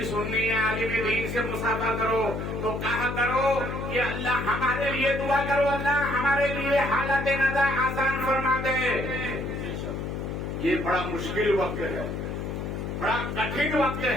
سنی عالم دین سے مصافحہ کرو تو کہا کرو کہ اللہ ہمارے لیے دعا کرو, اللہ ہمارے لیے حالت نزا آسان فرما دے. یہ بڑا مشکل وقت ہے, بڑا کٹھن وقت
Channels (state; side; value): noise; left; hum, 4 dB below the sound